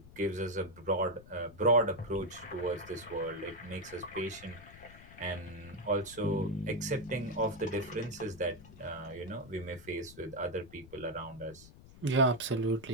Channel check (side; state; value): left; noise; rumble, 19 dB below the sound